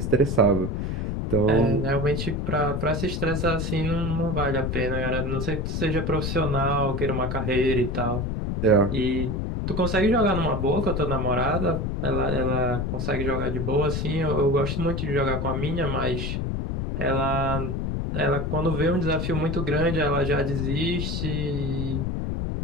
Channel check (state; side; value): noise; left; rumble, 1 dB below the sound